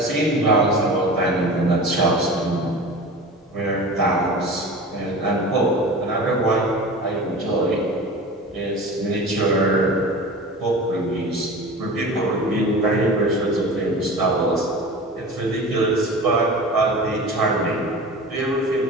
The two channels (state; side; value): normal; both; correlation 0.35